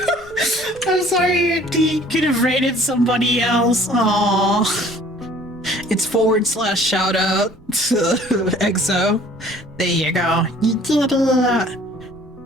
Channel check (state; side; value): noise; right; rumble, 24 dB below the sound